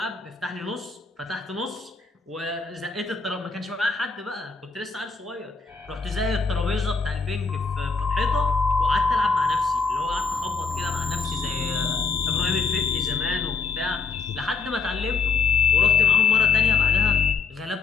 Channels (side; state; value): right; quieter; 5.0 dB